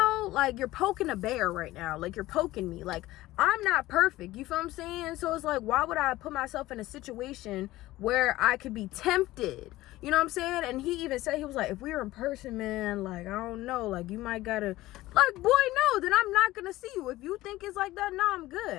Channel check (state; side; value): quieter; right; 17.1 dB